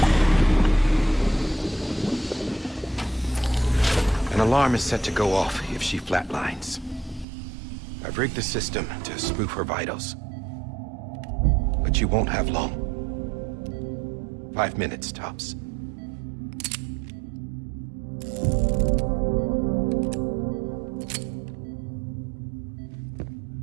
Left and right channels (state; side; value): drops out; left; at 7.2 s